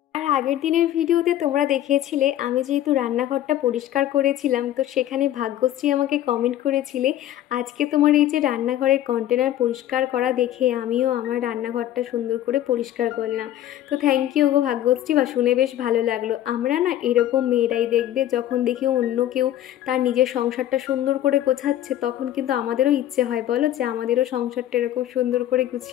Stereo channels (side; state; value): right; quieter; 12.4 dB